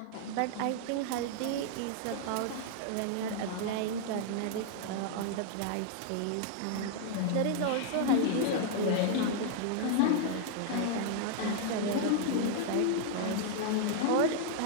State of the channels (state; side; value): different; both; correlation 0.00